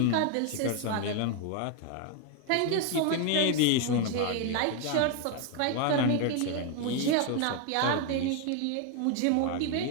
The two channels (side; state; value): both; different; correlation 0.01